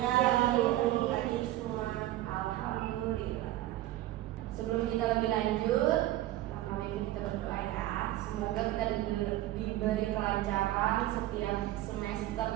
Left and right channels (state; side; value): quieter; left; 15.1 dB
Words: Ibu. hadir semua. Alhamdulillah. Sebelum kita lebih lanjut, pertama ini kita berdoa ya. Semoga kita diberi kelancaran setiap semester